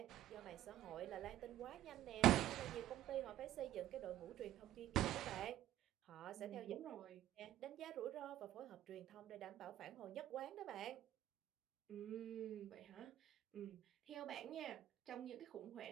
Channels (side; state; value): left; quieter; 13.1 dB